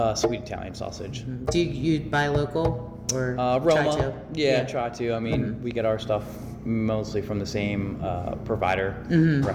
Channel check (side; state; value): both; identical; correlation 1.00